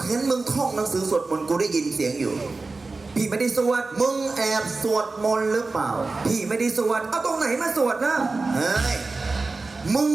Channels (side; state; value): left; quieter; 3.7 dB